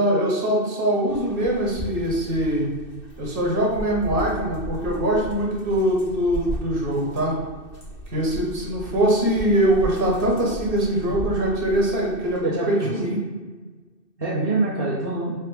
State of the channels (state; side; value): late; right; 2.6 ms